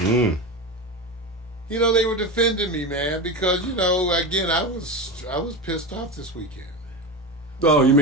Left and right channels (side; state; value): both; normal; correlation 0.21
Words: You know, they were defending me, man, because, you know, again, I was pissed off this weekend. Oh, you